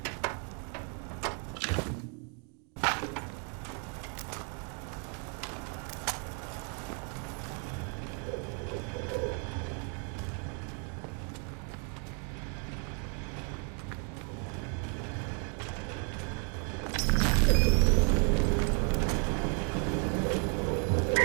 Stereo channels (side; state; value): left; quieter; 39.9 dB